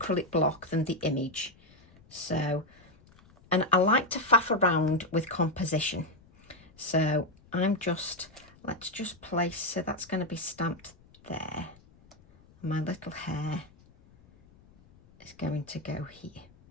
block than the image. So, and I like to faff around with composition. So let's just place, so that's going to be stamped there. My little hair is going to go here.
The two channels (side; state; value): left; noise; rumble, 27 dB below the sound